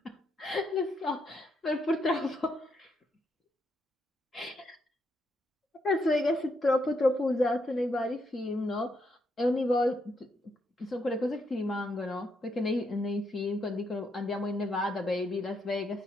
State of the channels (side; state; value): both; normal; correlation 0.78